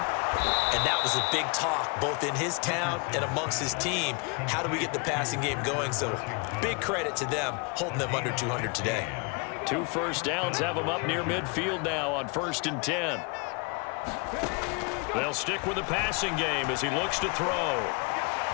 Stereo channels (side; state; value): right; quieter; 32.5 dB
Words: and that was a big talk both in his town and amongst his team. How do we get the passing game going? So big credit to them holding them under 200 today. 2 first downs have them up near midfield now on 1st and 10. They'll stick with the passing game as he looks to throw.